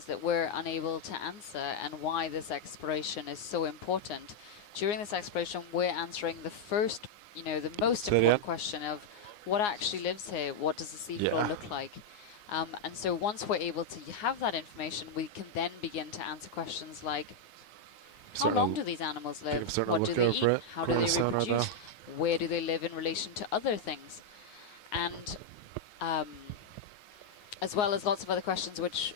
that we're unable to answer, and why this exploration is so important. During this exploration, we're answering the first, you know, the most important question of what actually lives here, what does the seafloor look like? And so once we're able to have that information, we can then begin to answer questions like, how long do these animals live? What do they eat? How do they reproduce? Where do they live in relation to other things? And as well as lots of other questions which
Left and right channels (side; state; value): right; late; 9.6 ms